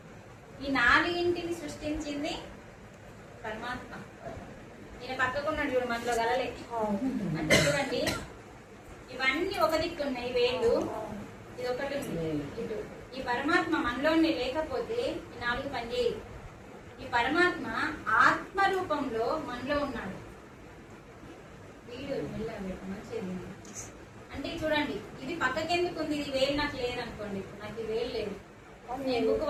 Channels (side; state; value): both; identical; correlation 1.00